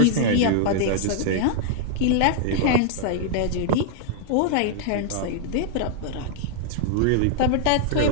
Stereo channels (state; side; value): different; both; correlation -0.01